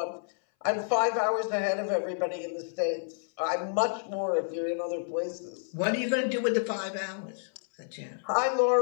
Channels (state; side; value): silent; right; 58 dB below the other